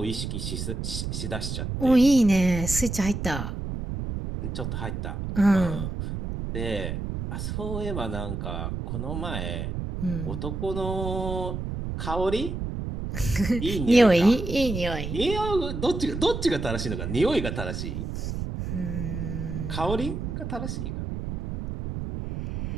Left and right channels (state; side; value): noise; right; rumble, 4 dB below the sound